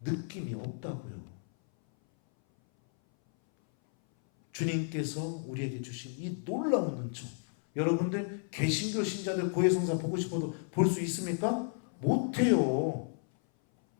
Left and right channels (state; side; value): silent; right; 56 dB below the other